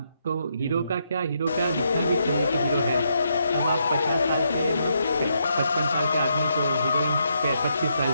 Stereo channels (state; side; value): inverted; both; correlation -0.78